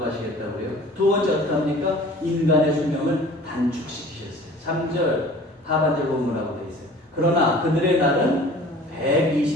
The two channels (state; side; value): normal; both; correlation 0.46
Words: 두 번째 어떻게 합니까? 인간의 수명을 단축시키셨어요. 3절 하반절 본문이라고 되어 있어요. 그러나 그들의 날은